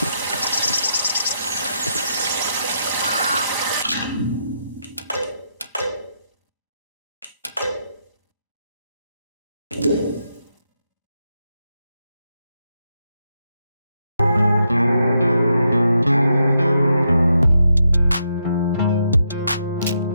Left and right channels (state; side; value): inverted; both; correlation -0.81